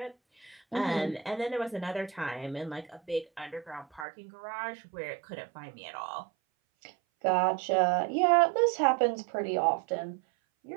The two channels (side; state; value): left; drops out; at 4.0 s